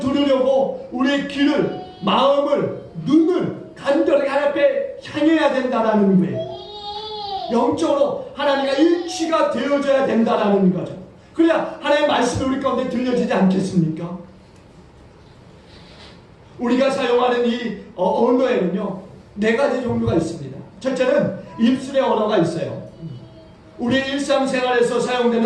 우리의 귀를, 마음을, 눈을 간절히 하나님 앞에 향해야 된다는 거예요. 영적으로 하나님과 일치가 되어져야 된다는 거죠. 그래야 하나님의 말씀이 우리 가운데 들려지지 않겠습니까? 우리가 사용하는 이 언어에는요, 4가지 종류가 있습니다. 첫째는 입술의 언어가 있어요. 우리 일상생활에서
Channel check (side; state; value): both; identical; correlation 1.00